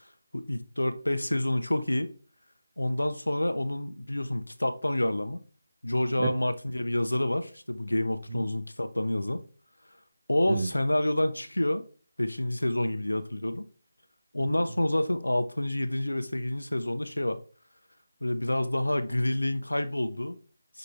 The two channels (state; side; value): inverted; both; correlation -0.98